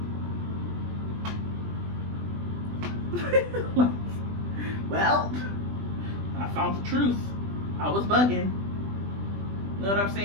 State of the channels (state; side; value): late; left; 20 ms